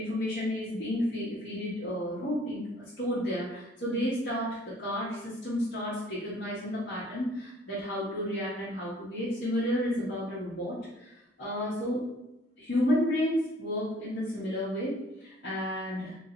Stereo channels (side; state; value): both; normal; correlation 0.56